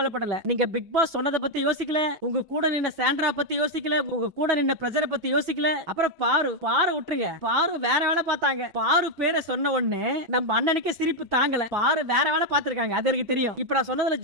நீங்க பிக் பாஸ் சொன்னதை பத்தி யோசிக்கல, உங்க கூட நின்ன சாண்ட்ரா பத்தி யோசிக்கல, உங்க கூட நின்ன பிரஜரை பத்தி யோசிக்கல. அப்புறம் பாரு விட்டுருங்க. பாரு வேற வேலை பார்த்தாங்க. பாரு பேரை சொன்ன உடனே நம்ம அண்ணனுக்கு சிரிப்பு தாங்கல. பாரு வேற வேலை பார்த்திருக்காங்க, அது எனக்கு தெரியும். இப்ப நான் சொன்னதுல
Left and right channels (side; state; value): left; late; 6.1 ms